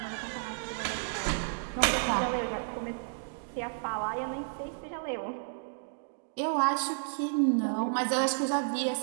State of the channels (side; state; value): left; silent; digital silence